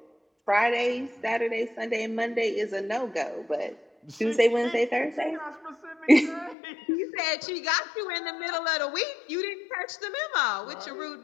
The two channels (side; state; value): right; drops out; at 6.6 s